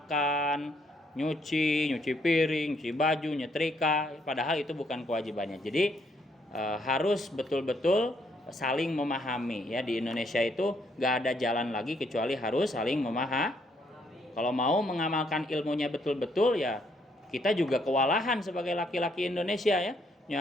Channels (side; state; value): both; normal; correlation 0.71